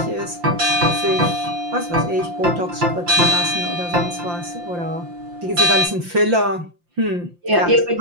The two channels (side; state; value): left; late; 5.7 ms